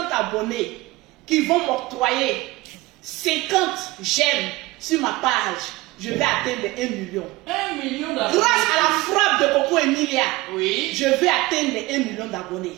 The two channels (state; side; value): quieter; left; 20.4 dB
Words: abonnés qui vont m'octroyer 50 j'aime sur ma page. Je vais atteindre les 1 million. 1 million d'abonnés. Grâce à la frappe de Coco Emilia, Oui. je vais atteindre les 1 million d'abonnés.